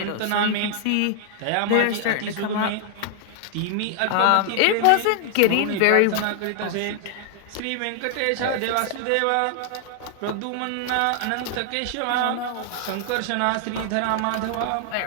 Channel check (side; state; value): both; different; correlation -0.01